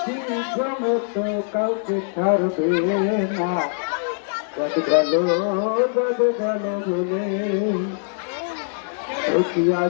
জমে তো কাউকে ছাড়বে না। যত গেল বলে একিয়া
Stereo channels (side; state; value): right; silent; digital silence